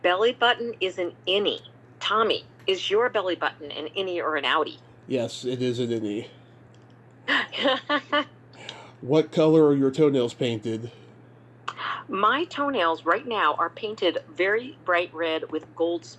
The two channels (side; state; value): both; identical; correlation 1.00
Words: button is an innie. Tommy, is your belly button an innie or an outie? Yes, it is an innie. What color are your toenails painted? My toenails right now are painted very bright red with gold